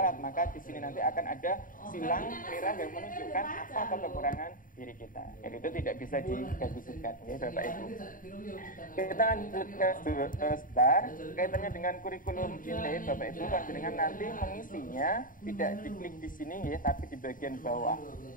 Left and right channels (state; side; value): late; right; 0.39 ms